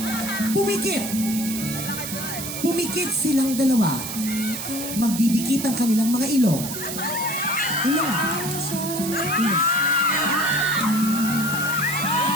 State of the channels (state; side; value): noise; right; hiss, 6 dB below the sound